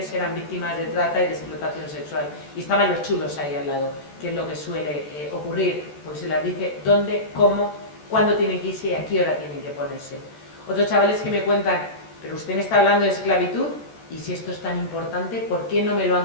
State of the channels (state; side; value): late; right; 14 ms